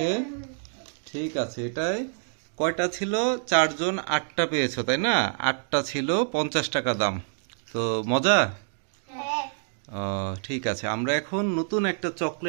ঠিক আছে। এটাই কয়টা ছিল? 4 জন 8টা পেয়েছো, তাই না? 8টা ছিল, 50 টাকা দাম। তো মজা। ঠিক আছে, আমরা এখন নতুন একটা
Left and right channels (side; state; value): left; silent; digital silence